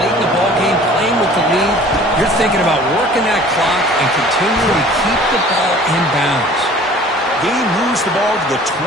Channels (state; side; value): normal; both; correlation 0.48